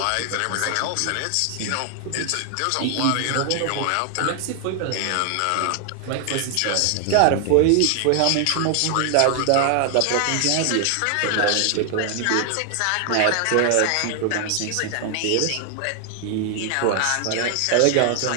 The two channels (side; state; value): both; different; correlation 0.00